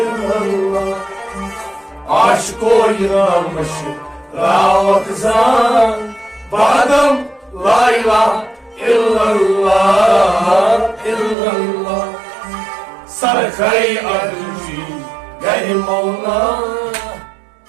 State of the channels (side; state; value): left; drops out; at 11.4 s